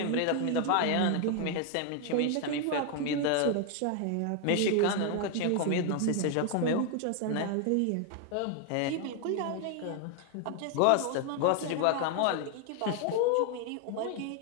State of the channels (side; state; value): both; different; correlation 0.00